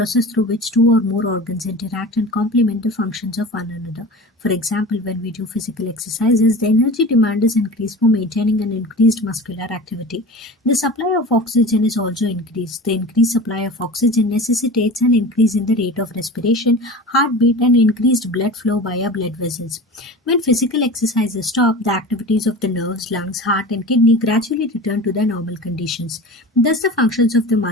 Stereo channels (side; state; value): both; normal; correlation 0.33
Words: through which two or more organs interact and complement the functions of one another. For example, when we do physical exercises, the energy demand is increased for maintaining an increased muscular activity. The supply of oxygen is also increased. The increased supply of oxygen necessitates an increase in the rate of respiration, heartbeat, and increased blood flow via blood vessels. When physical exercises stop, the activities of the nerves, lungs, heart, and kidney gradually return to their normal conditions. Thus, the functions of the